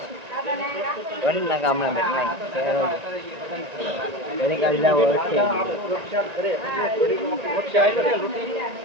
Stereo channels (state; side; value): late; left; 1.9 ms